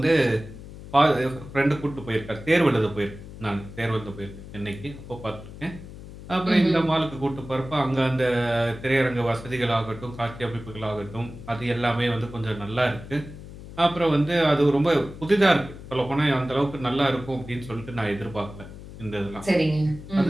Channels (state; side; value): noise; left; hum, 14 dB below the sound